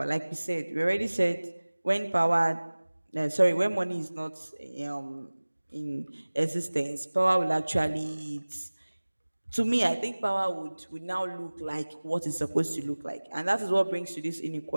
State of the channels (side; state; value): both; inverted; correlation -1.00